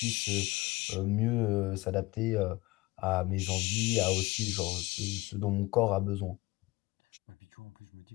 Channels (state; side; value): quieter; right; 21.6 dB